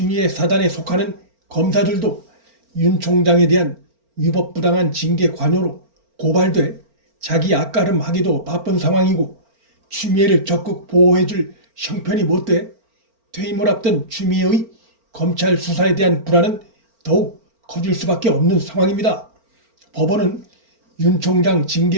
사단에 속하는 검사들도 윤 총장에 대한 위법부당한 징계 관여로 고발돼 자기 앞가름하기도 바쁜 상황이고, 추미애를 적극 보호해줄 형편이 못돼 퇴임을 앞둔 추미애의 검찰 수사에 대한 불안은 더욱 커질 수밖에 없는 상황입니다. 법원은 윤 총장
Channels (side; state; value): left; late; 4.4 ms